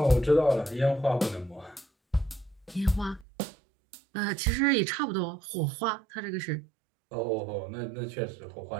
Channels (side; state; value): left; drops out; at 3.2 s